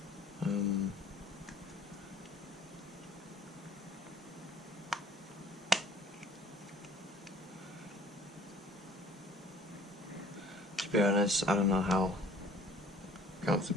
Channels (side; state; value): both; normal; correlation 0.52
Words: To be honest, I don't know how